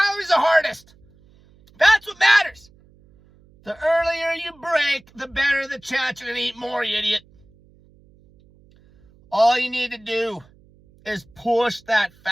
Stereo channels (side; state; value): right; noise; hum, 29 dB below the sound